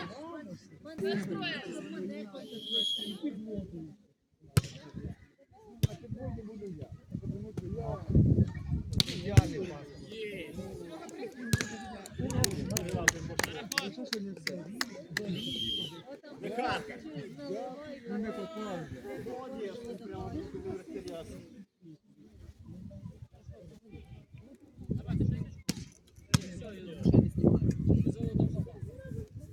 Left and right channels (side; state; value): both; identical; correlation 1.00